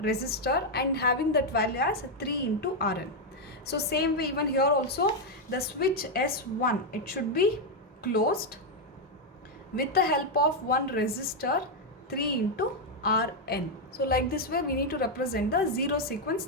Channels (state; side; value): normal; both; correlation 0.01